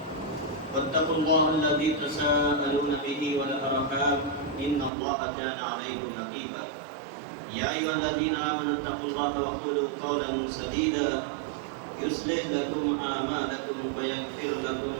واتقوا الله الذي تساءلون به والأرحام إن الله كان عليكم رقيبا. يا أيها الذين آمنوا اتقوا الله وقولوا قولا سديدا يصلح لكم أعمالكم ويغفر لكم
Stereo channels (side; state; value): left; drops out; at 4.9 s